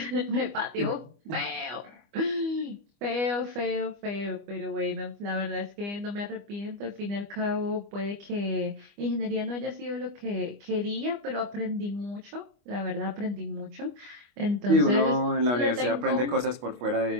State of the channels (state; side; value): late; left; 25 ms